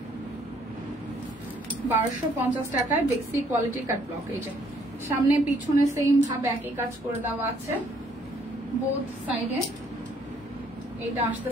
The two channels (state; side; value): normal; both; correlation 0.65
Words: 1250 টাকায় বেক্সি কোয়ালিটি কাট ব্লক। এই যে সামনে পিছনে সেম ভাবে একই কাজ করে দেওয়া আছে বোথ সাইডে। এইটা